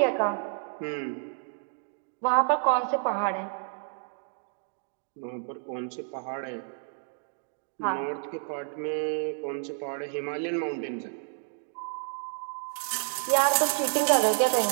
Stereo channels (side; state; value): left; silent; 58 dB below the other